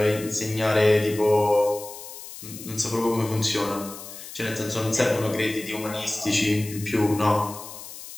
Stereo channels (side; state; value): left; noise; hiss, 13 dB below the sound